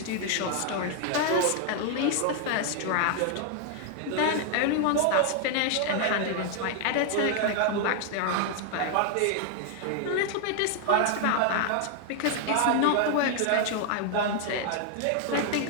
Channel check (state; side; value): different; both; correlation 0.00